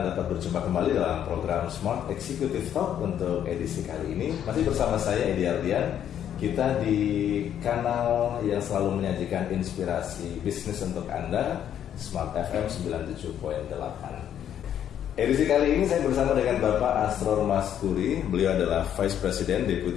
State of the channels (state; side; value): quieter; right; 9.9 dB